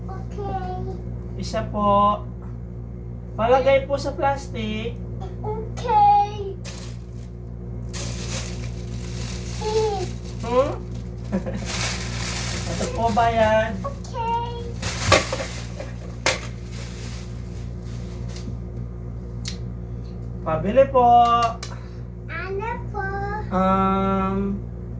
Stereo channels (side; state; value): both; identical; correlation 1.00